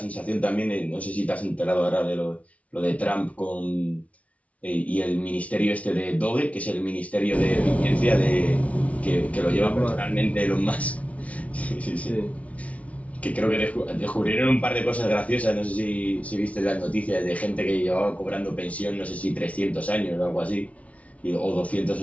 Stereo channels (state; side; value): late; right; 0.066 ms